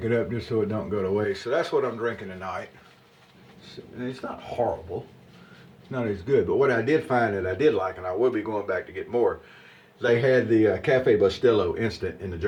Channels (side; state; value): both; identical; correlation 1.00